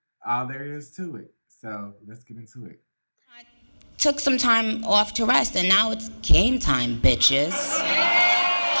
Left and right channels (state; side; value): inverted; both; correlation -1.00